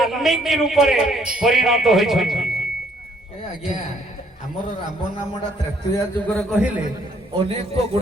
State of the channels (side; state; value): both; normal; correlation 0.65